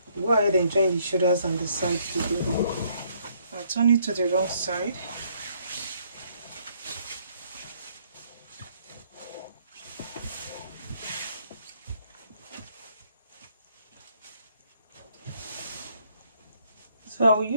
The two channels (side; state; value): both; inverted; correlation -0.68